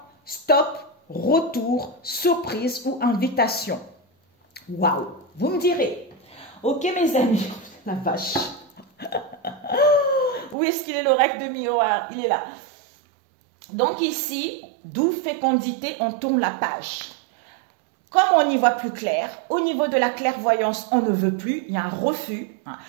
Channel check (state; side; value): drops out; left; at 10.6 s